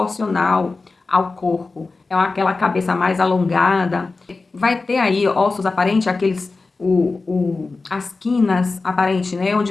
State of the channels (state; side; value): quieter; right; 3.8 dB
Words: ao corpo, é aquela cabeça mais alongada, vai ter aí ossos aparentes, aqueles, as quinas aparentes, né,